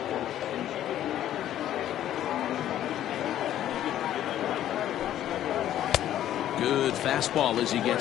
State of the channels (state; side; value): quieter; right; 11.9 dB